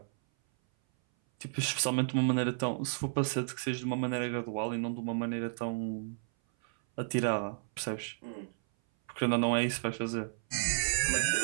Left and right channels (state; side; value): silent; left; 56 dB below the other